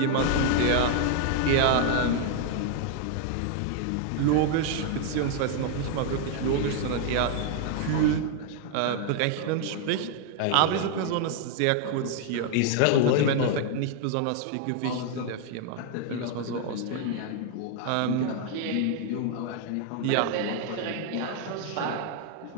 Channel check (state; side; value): different; both; correlation 0.00